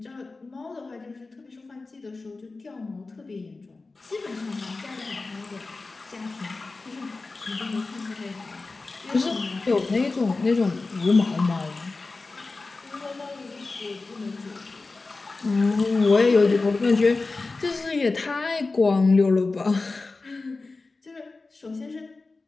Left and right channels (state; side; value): quieter; right; 3.6 dB